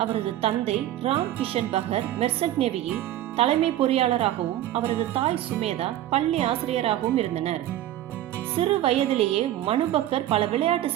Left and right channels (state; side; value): quieter; left; 13.1 dB